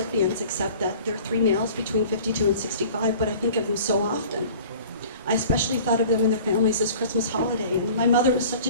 except that they're 3 males between 52 and 65, but I think of them so often. I especially thought of them and their families this Christmas holiday, and my mother was such a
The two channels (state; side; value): inverted; both; correlation -0.45